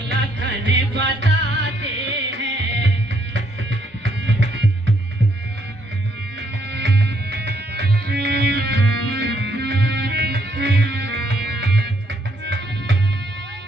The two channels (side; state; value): both; normal; correlation 0.71